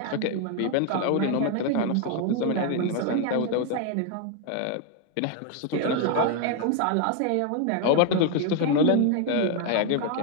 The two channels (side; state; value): both; different; correlation 0.01